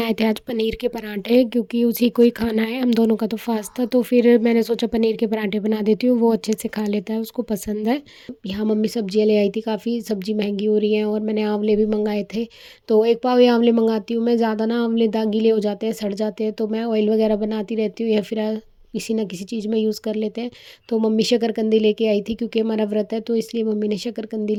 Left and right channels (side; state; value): both; identical; correlation 1.00